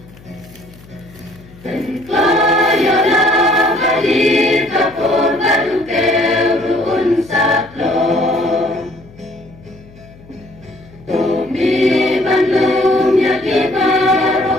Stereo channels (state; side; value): noise; left; hum, 23 dB below the sound